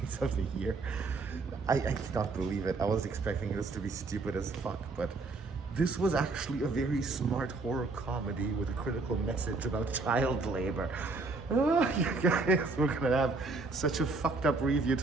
of the year. I cannot believe it. I was expecting this to be stupid as fuck, but this was actually a very smart horror comedy with a critical message about child labor. Oh, you guys, we're gonna have such a fucked up review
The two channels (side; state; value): left; quieter; 3.7 dB